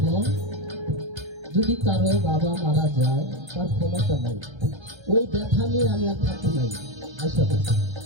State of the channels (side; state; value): left; late; 1.3 ms